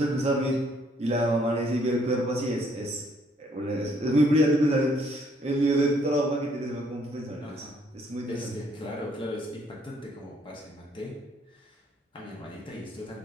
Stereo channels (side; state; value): both; normal; correlation 0.66